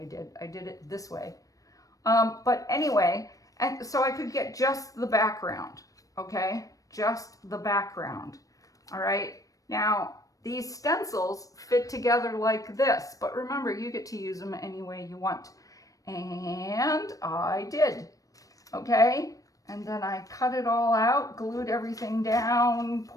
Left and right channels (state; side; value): late; right; 0.16 ms